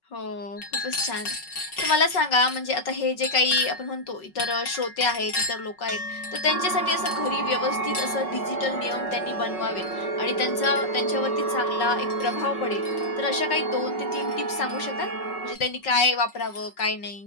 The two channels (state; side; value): late; right; 5.4 ms